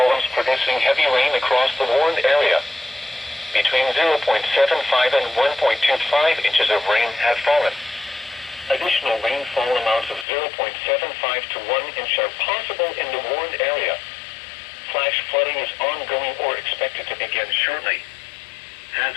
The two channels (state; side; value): drops out; right; at 10.2 s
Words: producing heavy rain across the warned area. Between 0.75 and 1.25 inches of rain have fallen. Additional rainfall amounts of 0.75 to 1 inch are possible in the warned area. Flash flooding is ongoing or expected to begin shortly.